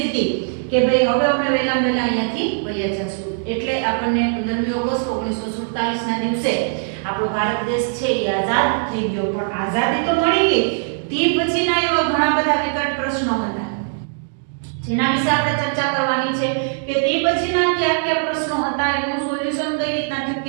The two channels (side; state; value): left; silent; digital silence